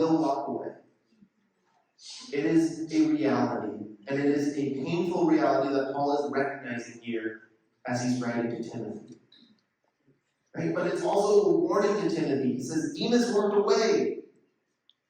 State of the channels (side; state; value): both; identical; correlation 1.00